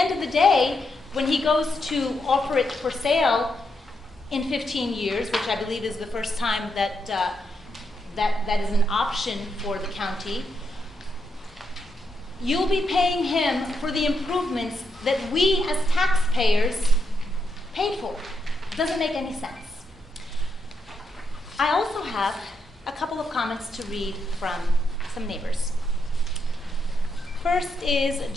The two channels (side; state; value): both; normal; correlation 0.81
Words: of the day, when he goes to offer it for sale in 15 years, which I believe is the first time that that is an option for the county, you'll be paying him for the improvements that we as taxpayers paid for. It doesn't make any sense. I also have a couple of comments to read from some neighbors. First is